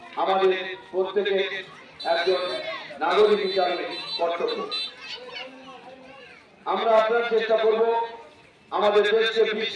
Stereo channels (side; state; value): both; identical; correlation 1.00